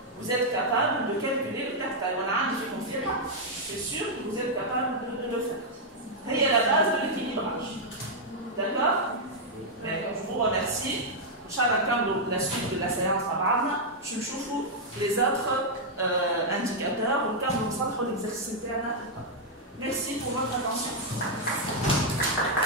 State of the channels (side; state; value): both; normal; correlation -0.04